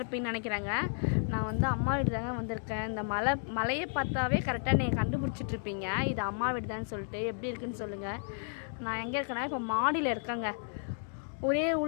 நினைக்கிறாங்க. நான் வந்து அம்மா வீடு தாங்க வந்திருக்கேன். இந்த மலையை பார்த்தாவே கரெக்டாக நீங்கள் கண்டுபிடிச்சிட்ருப்பீங்க இது அம்மா வீடு தான் சொல்லிட்டு. எப்படி இருக்குன்னு சொல்லுங்கள். நான் எங்கே இருக்கேன்னா இப்போ மாடியில் இருக்கேங்க. ஒரே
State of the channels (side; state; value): right; silent; digital silence